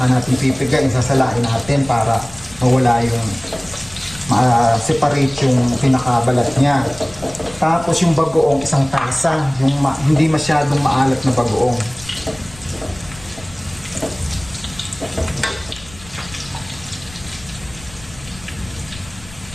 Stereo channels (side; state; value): left; noise; rumble, 20 dB below the sound